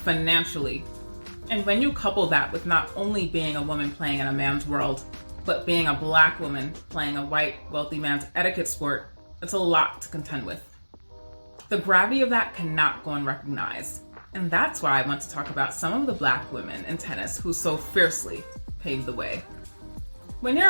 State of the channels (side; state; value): both; inverted; correlation -1.00